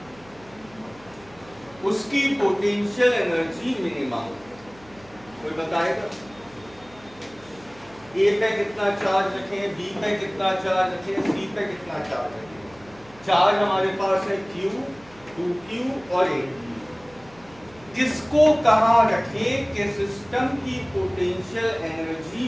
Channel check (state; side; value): noise; right; hum, 25 dB below the sound